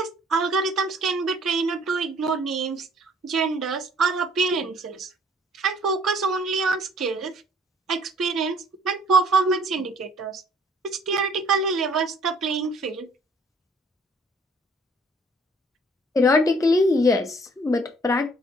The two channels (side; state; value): both; normal; correlation 0.58